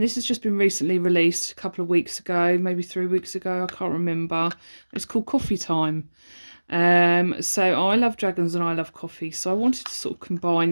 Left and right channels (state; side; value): inverted; both; correlation -1.00